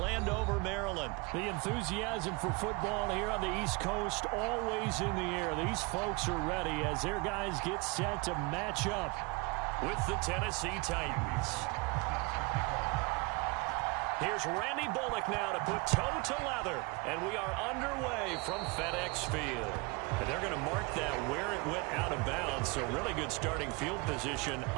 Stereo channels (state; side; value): quieter; left; 27.4 dB